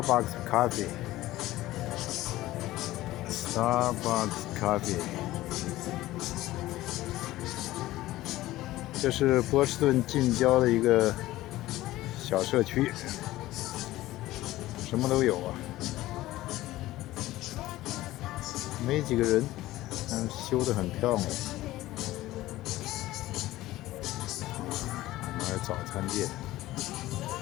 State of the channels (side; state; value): right; quieter; 16.5 dB